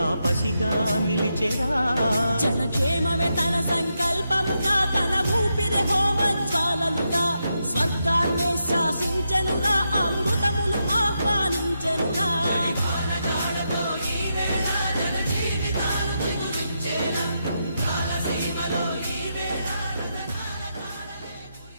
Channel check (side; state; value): both; inverted; correlation -0.84